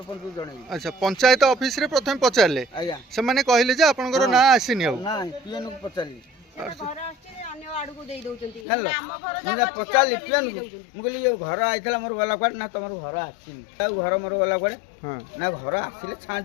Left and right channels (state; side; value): drops out; right; at 8.7 s